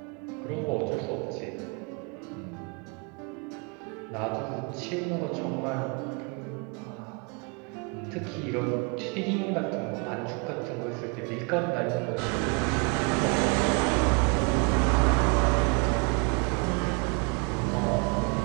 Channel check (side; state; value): left; quieter; 33.2 dB